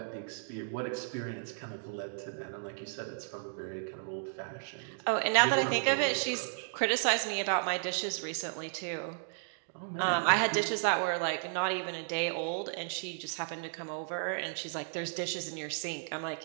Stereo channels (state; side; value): silent; left; digital silence